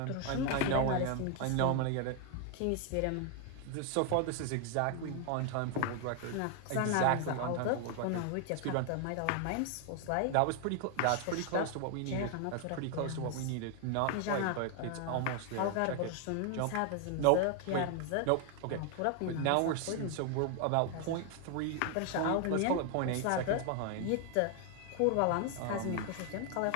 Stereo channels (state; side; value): different; both; correlation 0.00